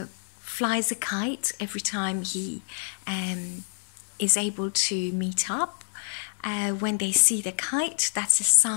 flies a kite every time he is able to meet up. When they see the kite, that's a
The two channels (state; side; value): silent; right; 60 dB below the other